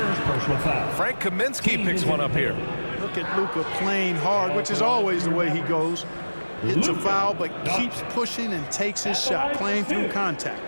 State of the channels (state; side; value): inverted; both; correlation -1.00